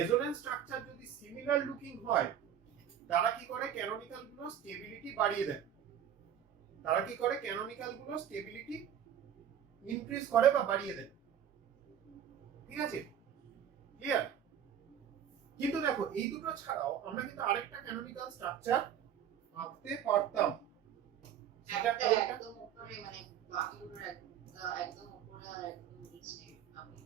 structure যদি similar looking হয়, তারা কি করে, canonical গুলো stability বাড়িয়ে দেয়, increase করে বা বাড়িয়ে দেয়। ঠিক আছে, ক্লিয়ার? কিন্তু দেখো এই দুটো ছাড়াও আমরা কিন্তু আরেকটা ক্যানোনিক্যাল স্ট্রাকচার আঁকতে পারতাম। সেটা একদম উপরে, মানে বাকি দুটোর একদম উপরে আর একদম নিচে আপনি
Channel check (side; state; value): left; quieter; 9.3 dB